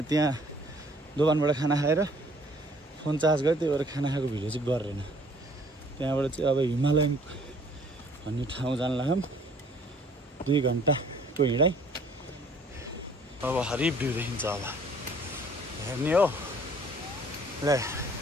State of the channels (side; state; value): both; normal; correlation 0.57